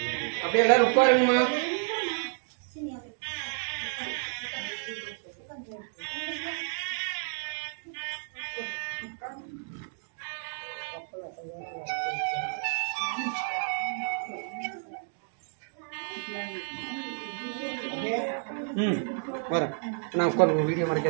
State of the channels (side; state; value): left; silent; 57 dB below the other